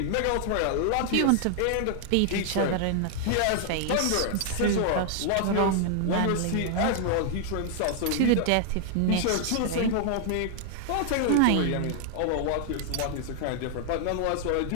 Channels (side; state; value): both; different; correlation 0.00